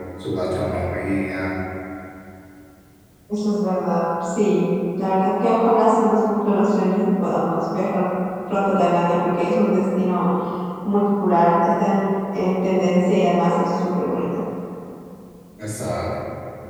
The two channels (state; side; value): identical; both; correlation 1.00